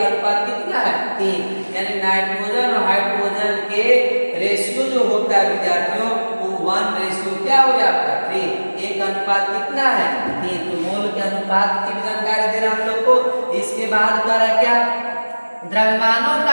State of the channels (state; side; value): inverted; both; correlation -1.00